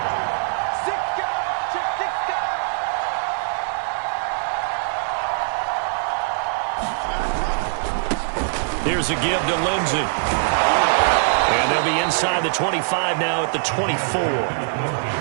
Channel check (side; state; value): left; silent; 60 dB below the other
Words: Here's a give to Lindsey. And they'll be inside the 25 now at the 24.